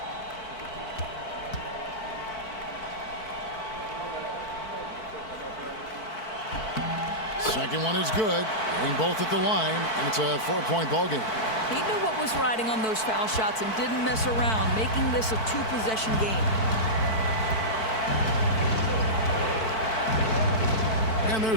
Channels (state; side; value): late; right; 4.5 ms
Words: Second one is good. Getting both at the line, and it's a 4-point ball game. He knew what was riding on those foul shots and didn't mess around, making this a 2-possession game. And